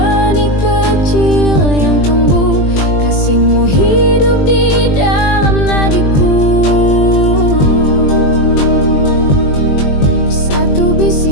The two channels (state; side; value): late; right; 20 ms